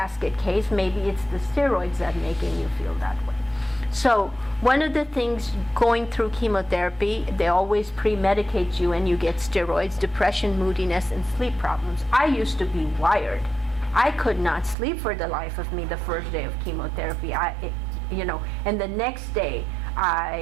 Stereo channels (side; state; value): left; drops out; at 14.8 s